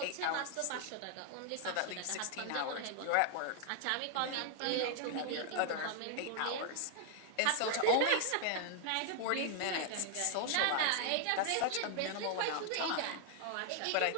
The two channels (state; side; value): different; both; correlation 0.00